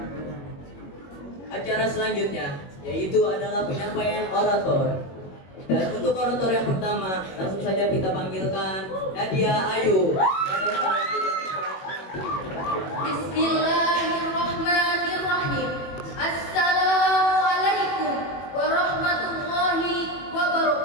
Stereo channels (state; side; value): late; right; 21 ms